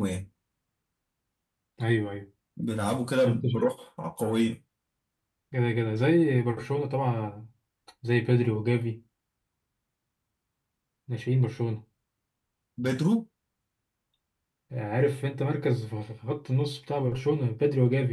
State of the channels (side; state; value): both; identical; correlation 1.00